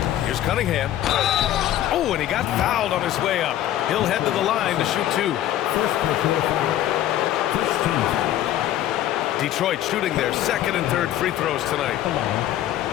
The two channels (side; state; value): right; quieter; 12.7 dB